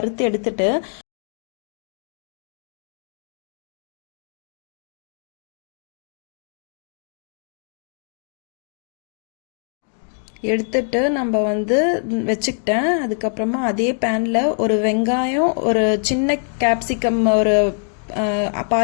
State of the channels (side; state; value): right; silent; 64 dB below the other